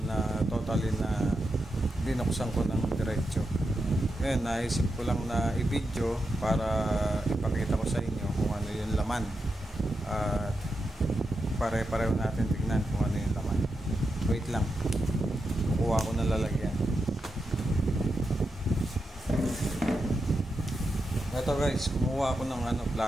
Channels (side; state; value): both; normal; correlation 0.87